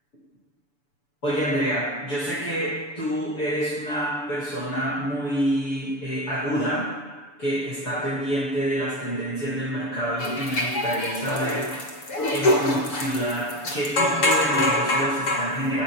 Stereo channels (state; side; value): late; right; 6.9 ms